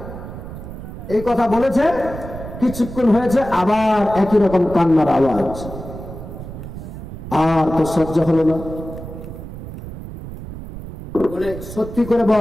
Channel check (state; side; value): noise; right; rumble, 11 dB below the sound